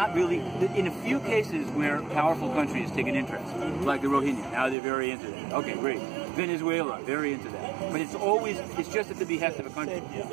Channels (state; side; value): drops out; left; at 4.8 s